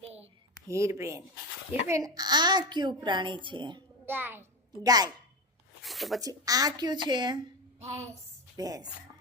હીરબેન. હીરબેન, આ કયું પ્રાણી છે? ગાય. ગાય. તો પછી આ કયું છે? ભેંસ. ભેંસ.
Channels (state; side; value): normal; both; correlation 0.18